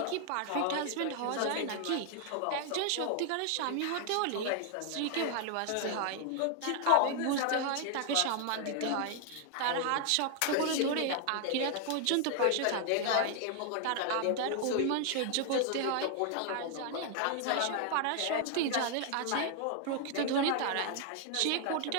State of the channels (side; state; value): both; different; correlation 0.00